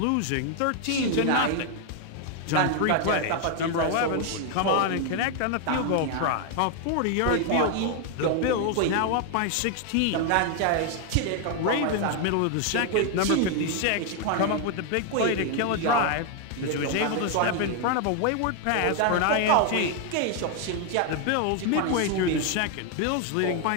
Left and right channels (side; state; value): both; different; correlation 0.01